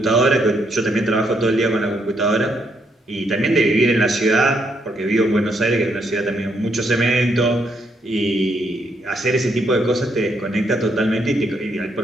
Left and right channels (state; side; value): normal; both; correlation 0.75